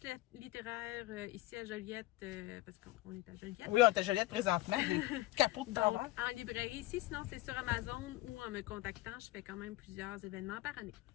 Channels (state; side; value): quieter; right; 17.6 dB